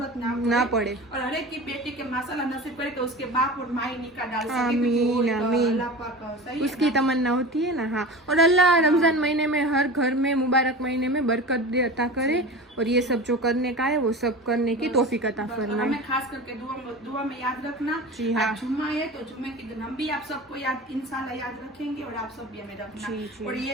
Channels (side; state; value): both; normal; correlation 0.32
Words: ना पड़े, और हर एक की बेटी के माशाल्लाह नसीब करे तो उसके बाप और माई निकाह डाल सके। आमीन आमीन, अल्लाह पाक उसकी तमन्ना होती है ना। हाँ, और अल्लाह रमजान महीने में हर घर में, मुबारक महीने में बरकत दे, अता करे, और ये सब जो करने का है वो सब करने की तौफीक अता फरमाए। हमें खास करके दुआ में याद रखना। जी हाँ, जुम्मा है तो जुम्मे के दिन हम भी आप सबको याद इंशाल्लाह याद रखेंगे, और आप सब भी हमें रखना। और ये